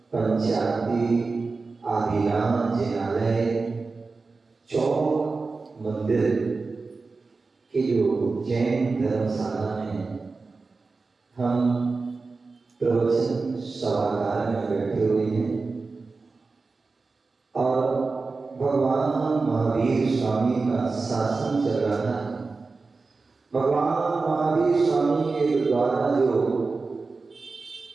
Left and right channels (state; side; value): quieter; left; 4.0 dB